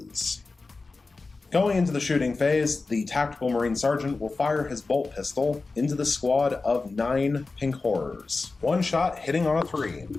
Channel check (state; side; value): quieter; right; 3.8 dB